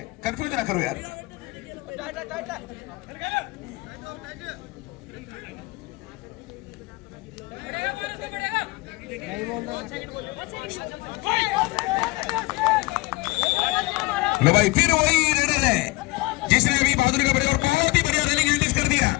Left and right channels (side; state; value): right; quieter; 22.7 dB